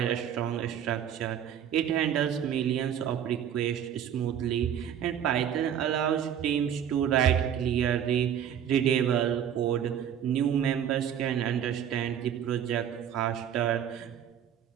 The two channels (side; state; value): left; quieter; 9.4 dB